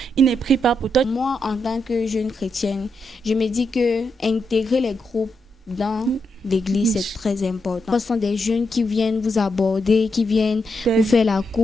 il ne prie pas pour toi. Moi, en tant que jeune chrétienne, je me dis que intégrer les groupes dans l'église, c'est très important. Ce sont des jeunes qui viennent vous aborder, qui viennent vous faire la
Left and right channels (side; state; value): both; normal; correlation 0.83